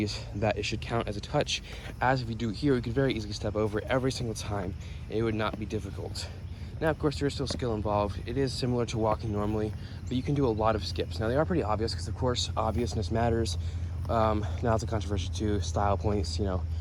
that it should count as a touch, as if you do it here, you could very easily step over it every single time, and it would not be difficult. Now, of course, there is still skill involved. It is similar to walking normally, but you can do a lot of skips. Now, they are pretty obvious, because of course, obviousness matters. Now it's a controversy too, style points, you know,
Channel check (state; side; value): identical; both; correlation 1.00